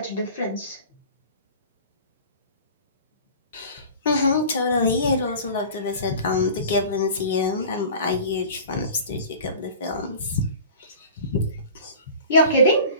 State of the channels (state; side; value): inverted; both; correlation -0.40